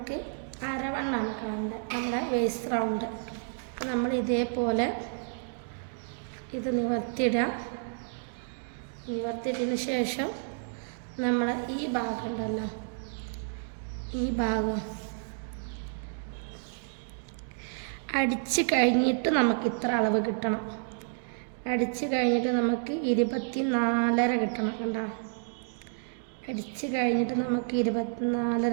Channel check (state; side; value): silent; left; digital silence